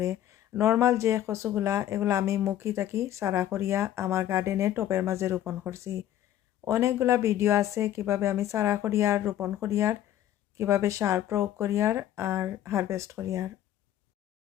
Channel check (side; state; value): right; quieter; 11.9 dB